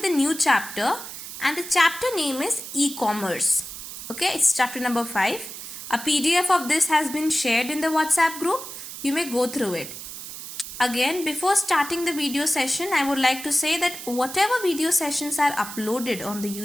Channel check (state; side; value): noise; right; hiss, 10 dB below the sound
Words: the new chapter, and the chapter name is e-commerce. Okay, it's chapter number 5. A PDF of this has been shared in the WhatsApp group. You may go through it. Again, before starting the video session, I would like to say that whatever video sessions are uploaded on the